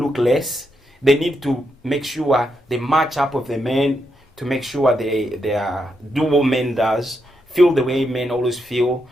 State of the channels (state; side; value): normal; both; correlation 0.82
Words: look less. They need to make sure they match up with the men, to make sure they are, do what men does, feel the way men always feel,